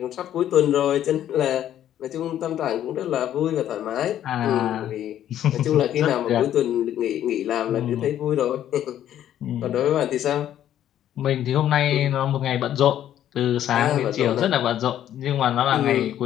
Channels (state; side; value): quieter; right; 11.3 dB